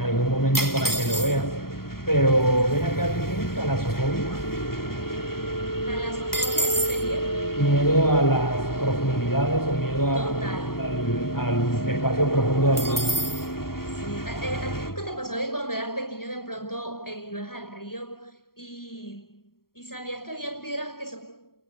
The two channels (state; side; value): late; right; 0.93 ms